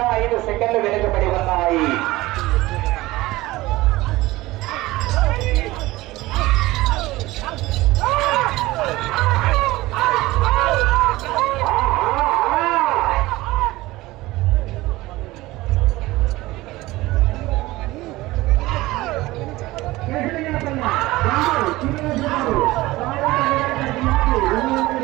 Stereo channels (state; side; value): quieter; left; 18.9 dB